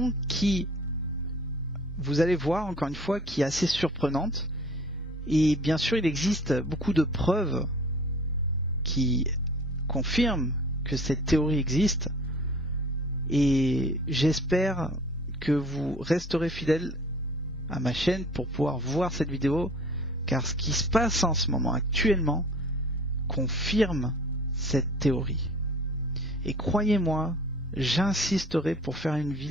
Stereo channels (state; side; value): normal; both; correlation 0.48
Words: qui, vous allez voir encore une fois, qui est assez surprenante. Et bien sûr, il existe beaucoup de preuves qui confirment que cette théorie existe. Et j'espère que vous resterez fidèles à ma chaîne pour pouvoir voir cette vidéo, car ce qui se passe en ce moment actuellement confirme cette théorie. Et croyez-moi, j'insisterai pour faire une